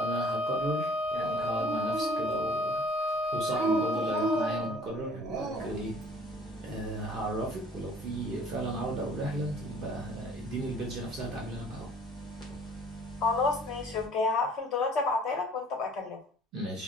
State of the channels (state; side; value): normal; both; correlation 0.53